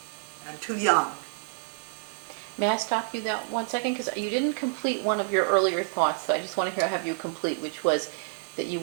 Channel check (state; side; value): silent; left; digital silence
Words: and too young. May I stop you that 1 second? Because you didn't complete one of your earlier thoughts, so I just want to have you complete, which was that you